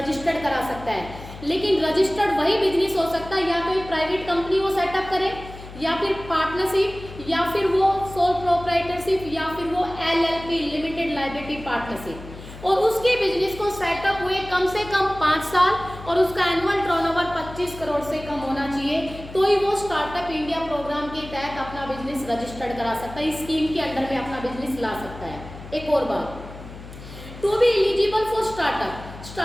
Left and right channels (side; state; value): left; noise; hum, 14 dB below the sound